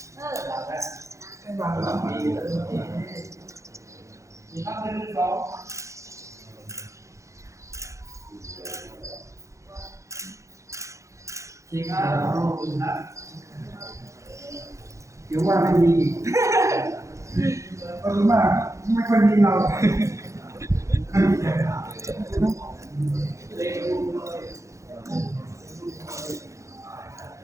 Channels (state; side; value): late; left; 0.15 ms